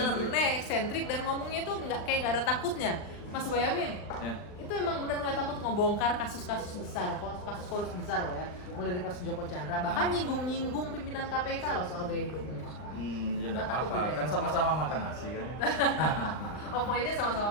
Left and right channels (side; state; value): right; late; 39 ms